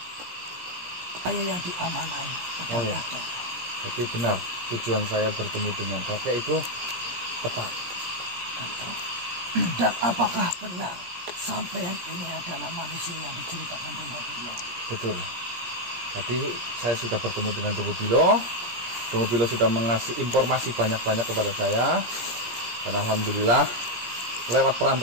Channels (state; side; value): late; left; 17 ms